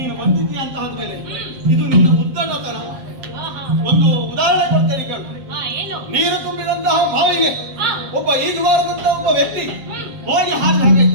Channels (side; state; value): left; late; 7.7 ms